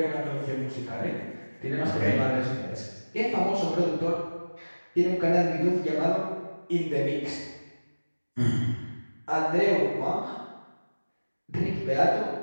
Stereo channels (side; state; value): both; inverted; correlation -1.00